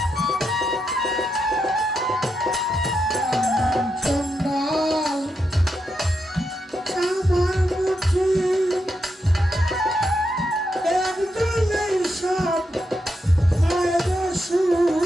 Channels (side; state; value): both; normal; correlation 0.84